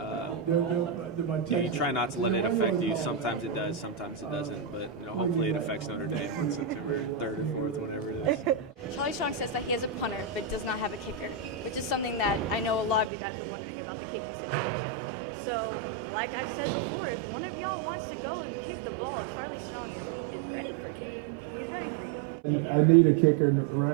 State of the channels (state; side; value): drops out; left; at 13.1 s